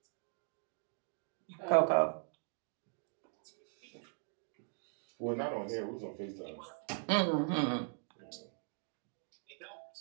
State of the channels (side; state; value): left; silent; 51 dB below the other